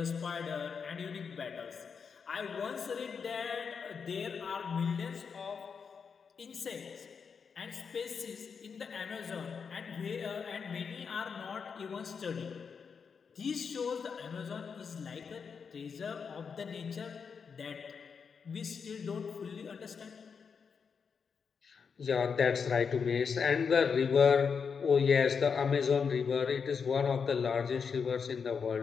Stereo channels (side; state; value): right; quieter; 6.0 dB